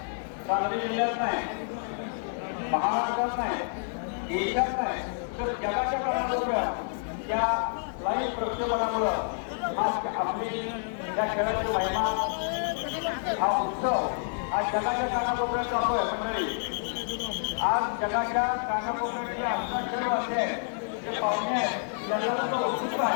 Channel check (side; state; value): right; silent; digital silence